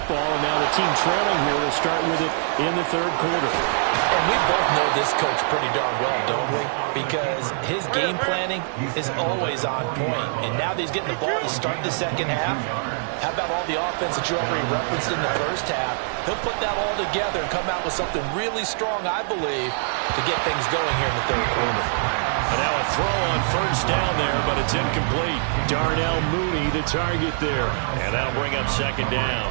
and now the team trailing here will start with it in the third quarter. And we both know this coach pretty darn well, don't we? Because his game planning is always on point. And now that he's getting the ball to start the second half, how about all the offense that you already referenced in the first half? He'll put that all together and come out with something really strong, I believe, to get things going here in the third quarter. And now a throw on first down there, but it's incomplete. Darnell Mooney, the target there. And that'll bring up second down.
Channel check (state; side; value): silent; left; 62 dB below the other